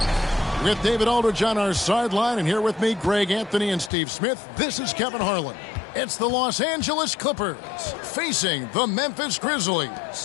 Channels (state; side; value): drops out; right; at 3.9 s